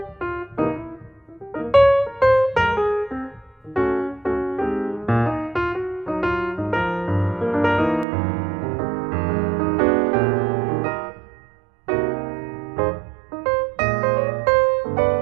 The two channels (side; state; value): left; drops out; at 8.1 s